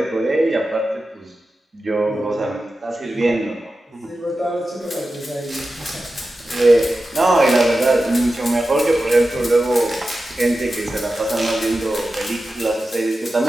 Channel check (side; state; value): both; normal; correlation 0.93